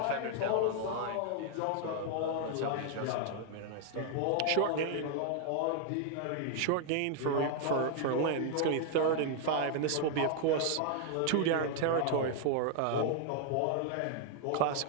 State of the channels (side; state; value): both; different; correlation 0.00